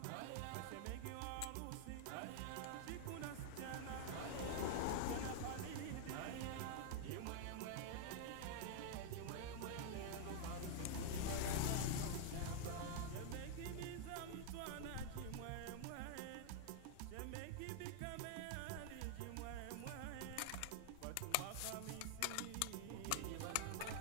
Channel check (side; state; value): both; different; correlation 0.00